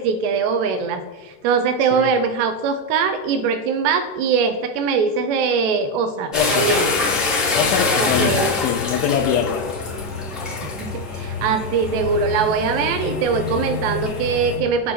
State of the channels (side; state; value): both; normal; correlation 0.06